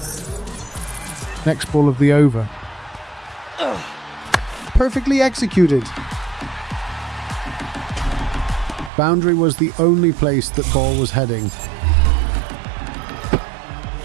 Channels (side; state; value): left; drops out; at 8.9 s